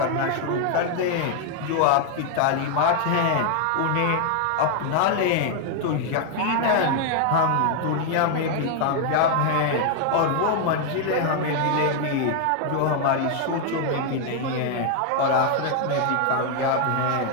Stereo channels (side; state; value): both; different; correlation 0.00